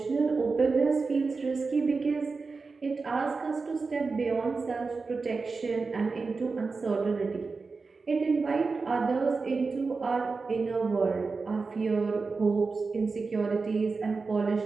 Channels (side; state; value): left; quieter; 4.3 dB